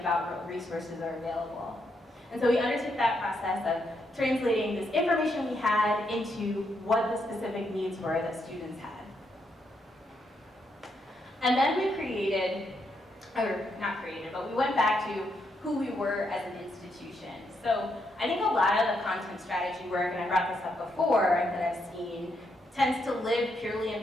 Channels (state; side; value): normal; both; correlation 0.79